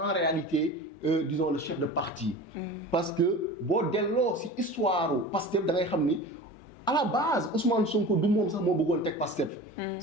en réalité, disons, le chef de parti. Parce que, bon, dès lors, si histoire Pastef, da ngay xam ni à la base, Ousmane Sonko du moom sax moo bëggoon teg Pastef.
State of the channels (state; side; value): normal; both; correlation 0.35